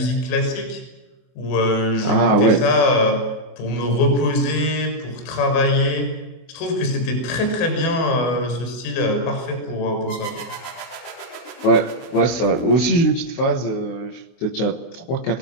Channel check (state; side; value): late; right; 24 ms